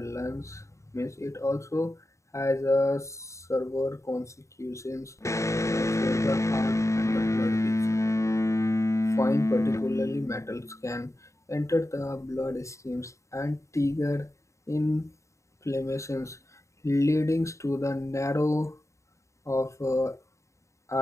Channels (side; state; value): right; late; 0.14 ms